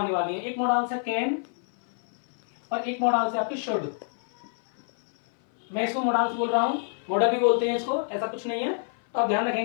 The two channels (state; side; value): silent; right; 57 dB below the other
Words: वाली हैं। एक मॉडल है कैन और एक मॉडल है आपकी शुड। मैं इसको मॉडल्स बोल रहा हूं, मॉडल भी बोलते हैं इसको, ऐसा कुछ नहीं है। तो आप ध्यान